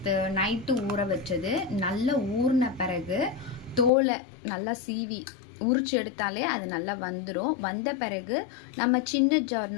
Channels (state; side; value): drops out; right; at 3.9 s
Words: நைட்டு ஊற வச்சது. நல்லா ஊறின பிறகு தோலை நல்லா சீவி உரிச்சு எடுத்தாலே அது நல்லா வந்துடும். வந்த பிறகு நம்ம சின்ன ஜார்